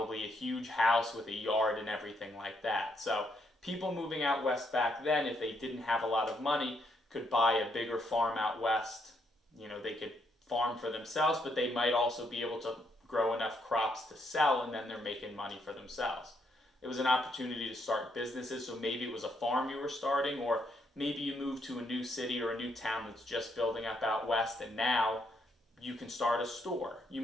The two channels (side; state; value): both; normal; correlation 0.75